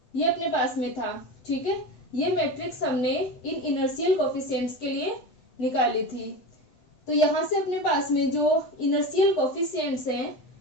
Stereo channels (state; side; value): late; right; 7.8 ms